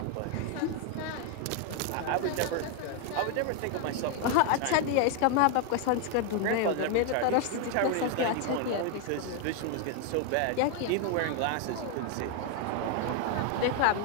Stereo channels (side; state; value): both; different; correlation 0.01